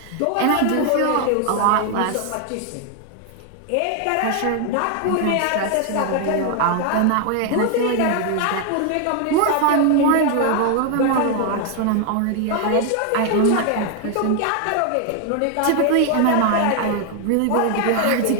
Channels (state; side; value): different; both; correlation 0.00